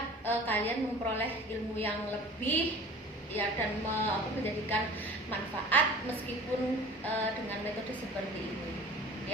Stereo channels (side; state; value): both; normal; correlation 0.42